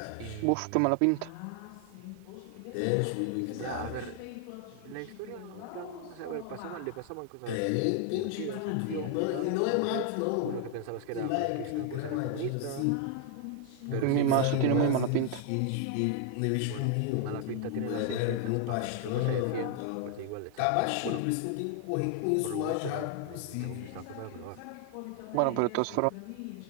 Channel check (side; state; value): both; different; correlation 0.00